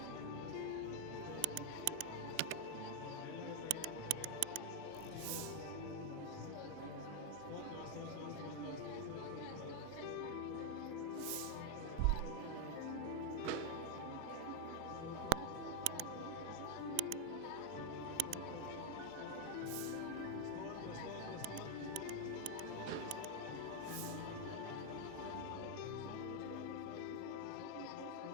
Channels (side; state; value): both; different; correlation 0.00